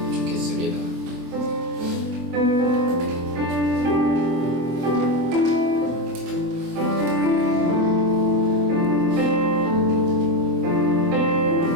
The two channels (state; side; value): late; left; 24 ms